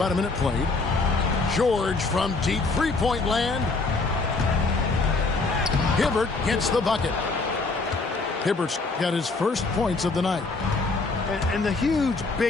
a minute played. George from deep three-point land. Hibbert gets the bucket. Hibbert's got his first points of the night. And the huge,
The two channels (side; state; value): right; quieter; 3.7 dB